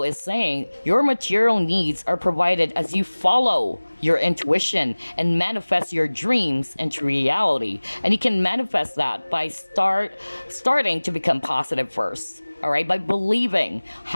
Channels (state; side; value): inverted; both; correlation -1.00